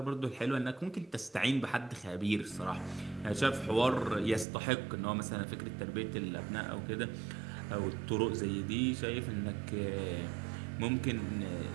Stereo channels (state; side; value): drops out; left; at 4.5 s